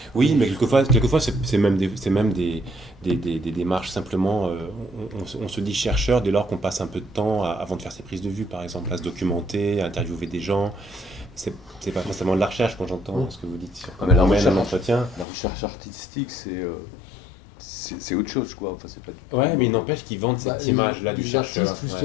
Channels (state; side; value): drops out; right; at 15.2 s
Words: Oui, mais quelquefois c'est même des démarches simplement. On se dit chercheur dès lors qu'on passe un peu de temps avant de faire ses prises de vue, par exemple, à se documenter, à interviewer des gens. C'est pas forcément de la recherche quand j'entends ce que vous dites sur comment on mène un entretien. La recherche artistique, c'est autre chose, quoi. Enfin, c'est pas... Ouais, mais il n'empêche qu'ils vendent cette image-là du chercheur. Artistes,